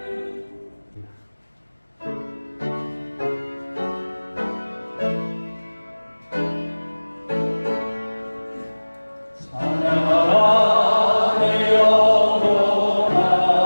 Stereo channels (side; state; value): both; inverted; correlation -1.00